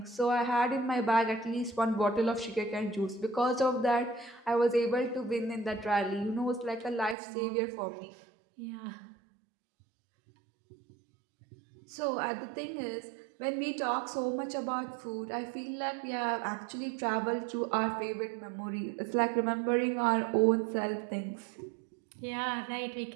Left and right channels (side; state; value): left; drops out; at 7.2 s